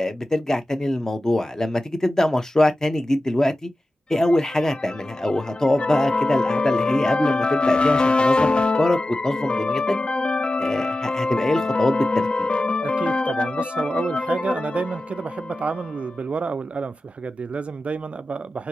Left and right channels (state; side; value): normal; both; correlation 0.94